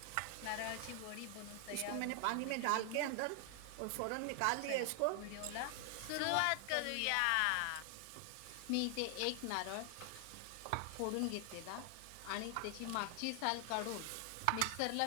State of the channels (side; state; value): both; different; correlation 0.00